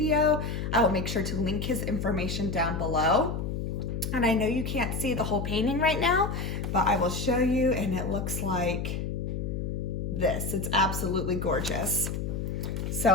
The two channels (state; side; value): noise; left; hum, 3 dB below the sound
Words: I will make sure to link his information down below. And I know you can't see the whole painting right now, but I will show you, and it looks like this. It's absolutely gorgeous.